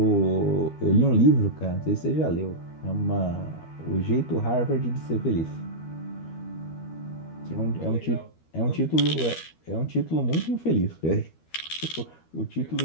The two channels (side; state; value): right; late; 13 ms